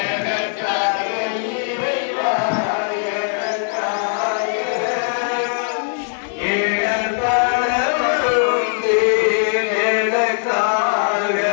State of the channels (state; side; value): silent; right; digital silence